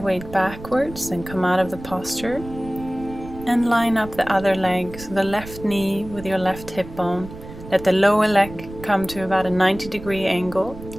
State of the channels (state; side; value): noise; right; rumble, 14 dB below the sound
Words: backwards and come out of the posture and line up the other leg, so the left knee with your left hip bone. Let the lower leg come to about a 90-degree angle,